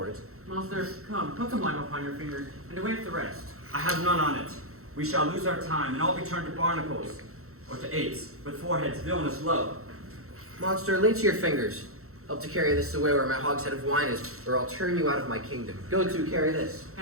it. Monster, come, put some lime upon your finger, and away with the rest. I have none on it. We shall lose our time, and all be turned to barnacles, or to apes, with foreheads villainous low. Monster, lay to your fingers. Help to carry this away where my hogshead of wine is, or I'll turn you out of my kingdom. Go to, carry this.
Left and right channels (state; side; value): late; left; 0.63 ms